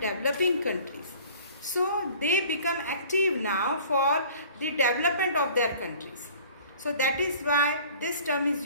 developing countries. So they become active now for the development of their countries. So that is why this term is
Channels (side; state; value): both; inverted; correlation -0.48